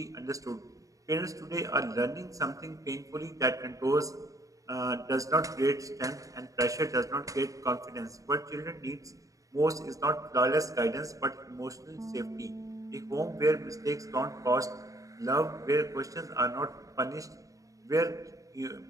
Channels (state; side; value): late; left; 0.16 ms